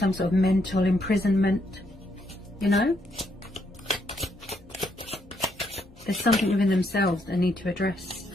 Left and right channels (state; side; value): normal; both; correlation 0.75